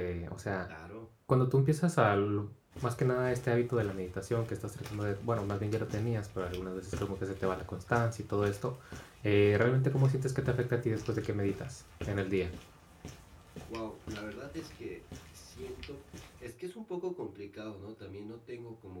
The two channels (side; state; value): both; identical; correlation 1.00